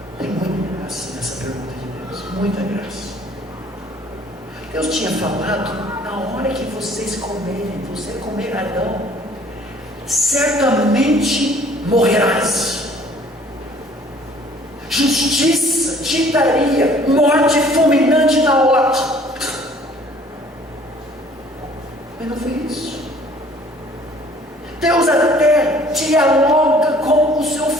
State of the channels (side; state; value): both; normal; correlation 0.55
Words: Tem muita graça nessa pergunta de Deus, muita graça. Deus tinha falado: na hora que vocês comerem, você comer Adão, certamente morrerás. Justiça te daria morte fulminante na hora. Mas não foi isso. Deus até dialoga com o seu